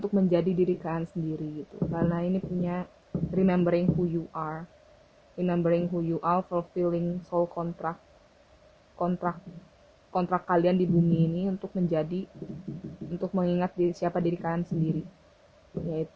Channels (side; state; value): both; identical; correlation 1.00